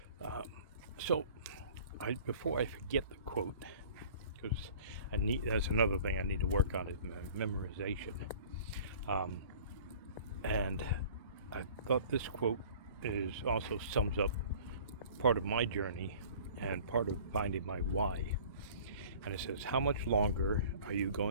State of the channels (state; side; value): inverted; both; correlation -0.47